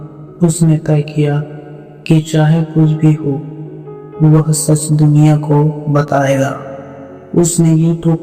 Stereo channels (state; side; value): identical; both; correlation 1.00